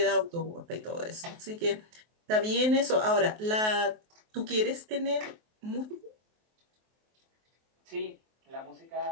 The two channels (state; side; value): late; left; 23 ms